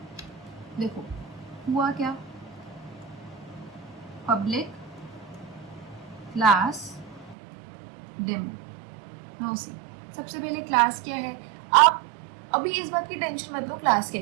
देखो हुआ क्या, public class demo. Now see, सबसे पहले क्लास क्या है। आप अभी इस बात की टेंशन मत लो क्लास क्या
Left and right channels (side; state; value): left; drops out; at 7.4 s